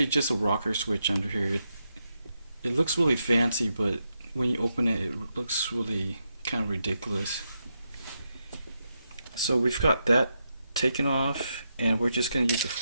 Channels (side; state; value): both; inverted; correlation -0.84